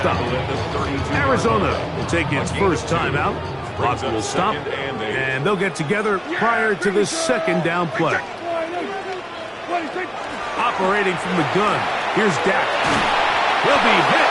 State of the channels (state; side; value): identical; both; correlation 1.00